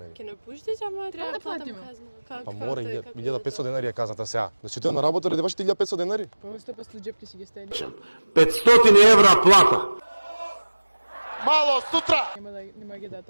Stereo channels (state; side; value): inverted; both; correlation -1.00